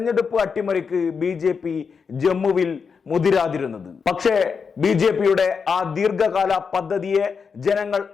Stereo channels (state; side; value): quieter; right; 5.7 dB